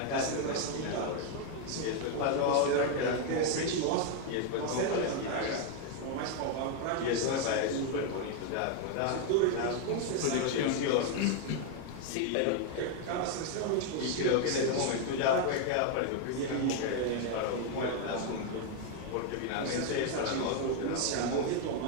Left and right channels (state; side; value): different; both; correlation 0.01